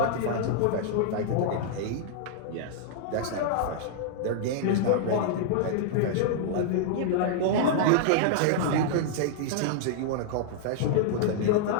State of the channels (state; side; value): different; both; correlation -0.01